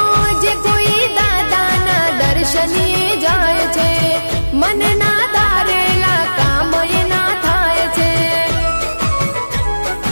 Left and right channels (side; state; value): both; inverted; correlation -1.00